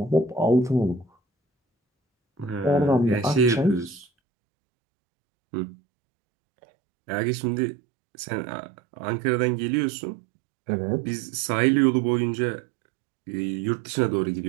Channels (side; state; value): left; drops out; at 4.0 s